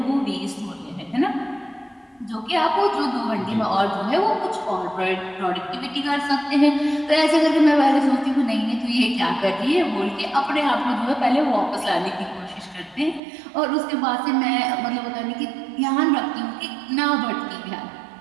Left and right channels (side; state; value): left; drops out; at 13.2 s